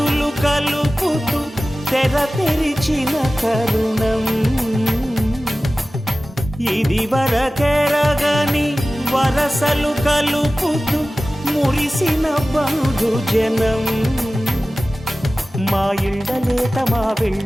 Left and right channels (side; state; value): both; normal; correlation 0.96